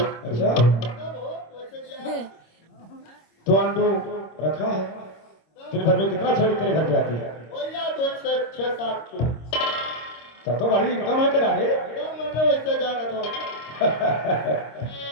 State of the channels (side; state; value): right; late; 26 ms